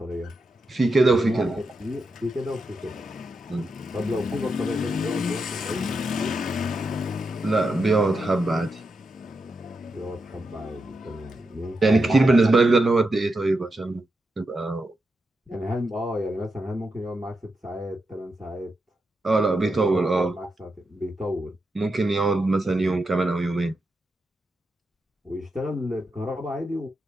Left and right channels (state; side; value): normal; both; correlation 0.86